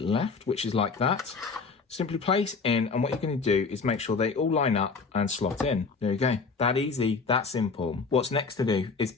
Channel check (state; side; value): quieter; right; 4.7 dB